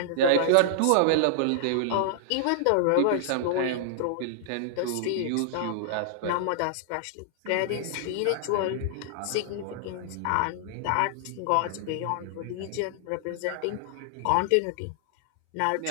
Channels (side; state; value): both; different; correlation -0.01